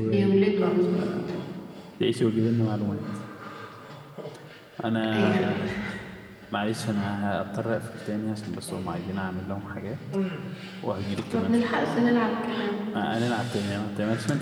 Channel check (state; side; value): identical; both; correlation 1.00